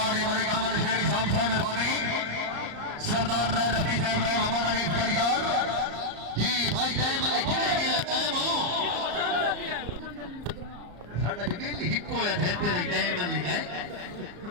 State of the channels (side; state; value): left; late; 34 ms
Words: है मेरे कामल शेरी साहब से मेहरबानी सरदार रफी साहब रहे मोहम्मद अनीफ कलियार जी भाई टाइम कितने के टाइम हो साडा जमील हिक्को या थे तेरे टाइम नहीं है